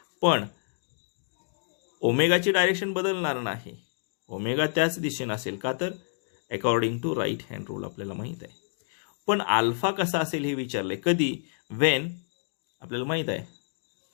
पण ओमेगाची डायरेक्शन बदलणार नाही, ओमेगा त्याच दिशेने असेल, का तर according to right hand rule आपल्याला माहीत आहे. पण अल्फा कसा असेल हे विचारले, कधी, वेन आपल्याला माहीत आहे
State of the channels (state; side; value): silent; right; digital silence